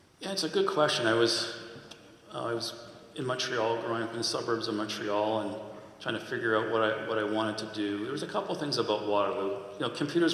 Yeah, it's a good question. I was in Montreal, growing up in the suburbs of Montreal, and trying to figure out what I wanted to do. There was a couple things about Waterloo.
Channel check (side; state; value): both; identical; correlation 1.00